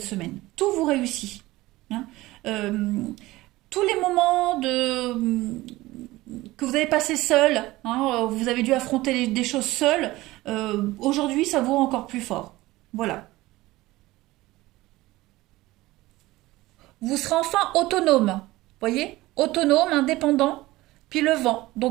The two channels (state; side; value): quieter; left; 18.6 dB